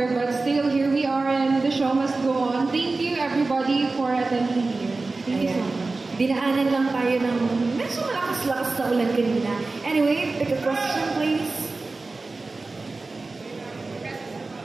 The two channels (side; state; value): left; quieter; 3.6 dB